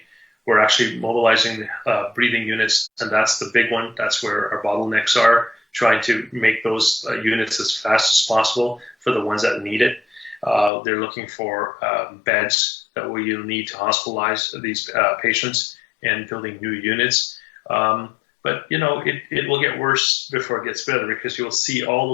We're actually mobilizing breathing units, and that's the big one. That's where our bottlenecks are, trying to make those units as fast as possible for the ones that need it. They're looking for beds that we need to hospitalize these patients and building new units. But it will get worse before it gets better, because you'll see all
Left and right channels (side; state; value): right; drops out; at 10.7 s